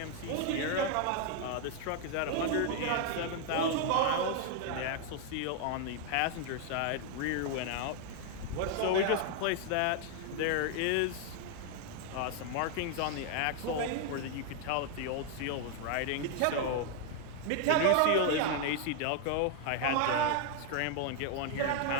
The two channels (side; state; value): both; different; correlation 0.00